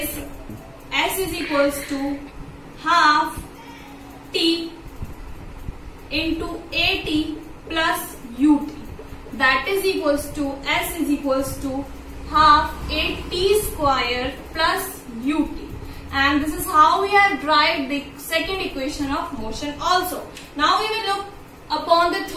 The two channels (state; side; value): identical; both; correlation 1.00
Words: S is equals to half T into AT plus UT. That is equals to S is equals to half AT square plus UT. And this is how we have derived the second equation of motion also. Now we will look upon the